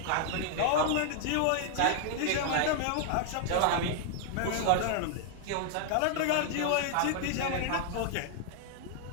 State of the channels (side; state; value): both; different; correlation 0.00